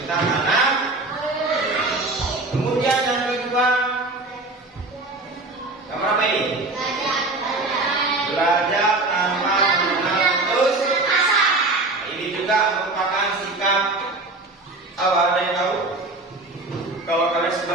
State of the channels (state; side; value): quieter; left; 3.1 dB